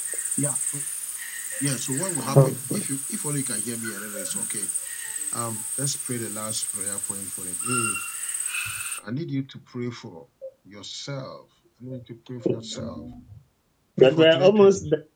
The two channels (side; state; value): both; identical; correlation 1.00